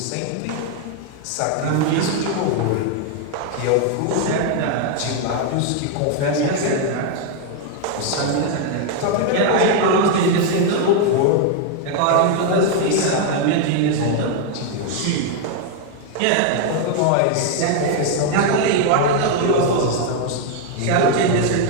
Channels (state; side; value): different; both; correlation 0.01